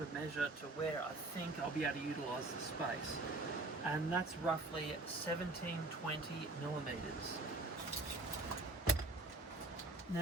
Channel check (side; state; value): left; quieter; 3.0 dB